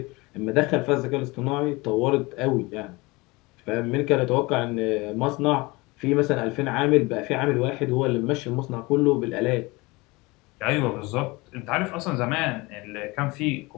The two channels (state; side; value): quieter; right; 23.8 dB